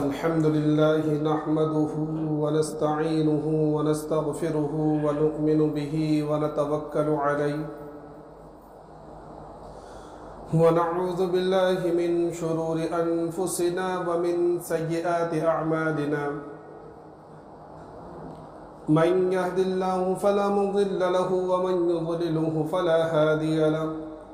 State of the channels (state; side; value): identical; both; correlation 1.00